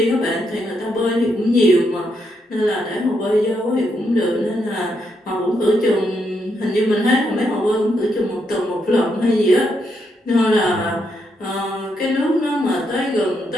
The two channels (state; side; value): normal; both; correlation 0.79